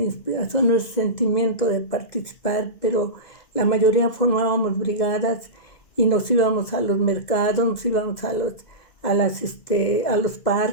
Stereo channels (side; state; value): right; late; 2.0 ms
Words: ese sentimiento de participar, pero la mayoría formábamos brigadas y nos íbamos a los mercados, nos íbamos a los